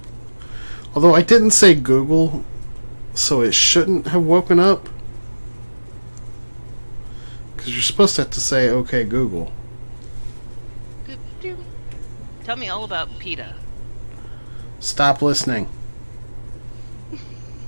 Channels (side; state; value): both; inverted; correlation -1.00